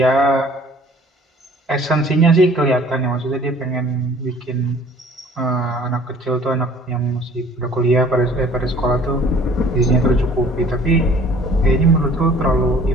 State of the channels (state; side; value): normal; both; correlation 0.52